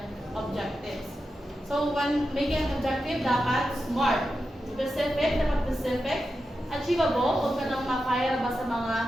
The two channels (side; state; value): both; normal; correlation 0.90